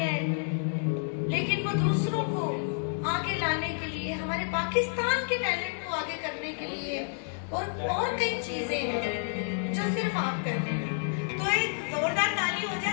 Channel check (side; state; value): right; silent; digital silence